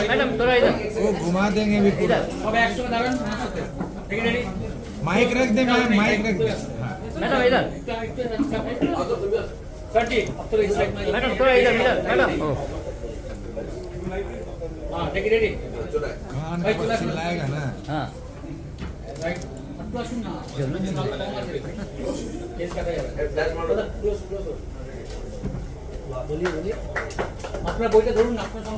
मैडम थोड़ा इधर वो घुमा देंगे भी पूरा। सब एक साथ में दारण ठीक है रेडी माइक रख दे, माइक रख दे। हाँ। मैडम इधर सर जी अब तो इस साइड में मैडम थोड़ा इधर मैडम हां ठीक है रेडी हाँ ना, बस चिल्लाएगा ना। हाँ राइट अपना सुनना केस कर रहे बोलिए अपना बोलते धरून अपना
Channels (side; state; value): both; identical; correlation 1.00